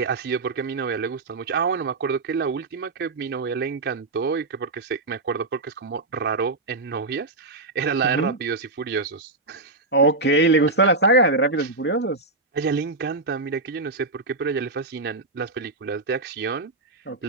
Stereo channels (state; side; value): quieter; left; 3.3 dB